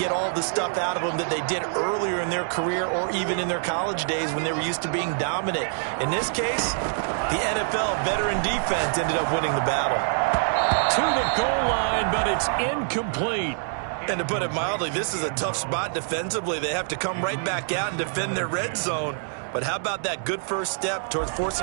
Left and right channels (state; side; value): silent; left; digital silence